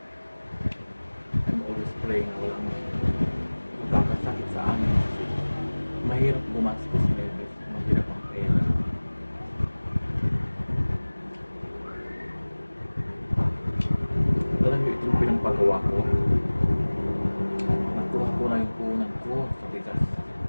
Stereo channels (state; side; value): inverted; both; correlation -1.00